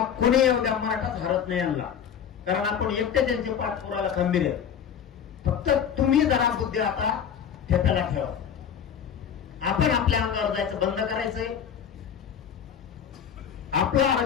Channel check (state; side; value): quieter; right; 8.2 dB